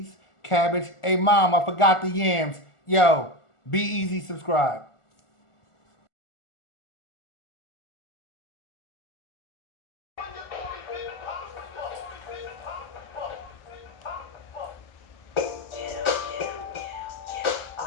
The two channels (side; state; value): right; late; 1.4 ms